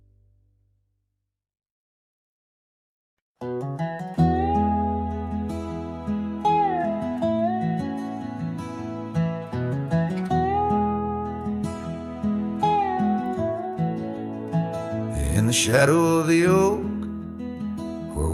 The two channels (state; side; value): identical; both; correlation 1.00